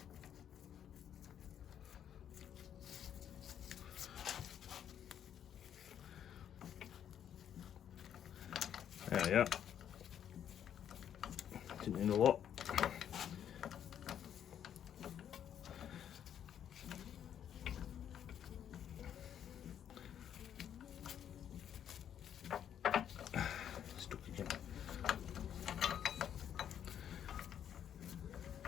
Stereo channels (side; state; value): right; quieter; 9.5 dB